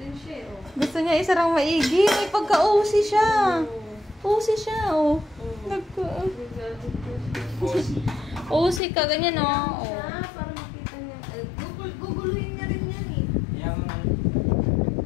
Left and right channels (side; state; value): right; drops out; at 8.8 s